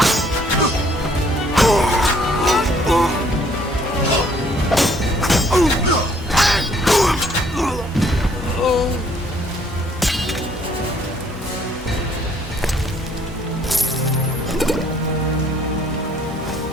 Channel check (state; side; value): normal; both; correlation 0.63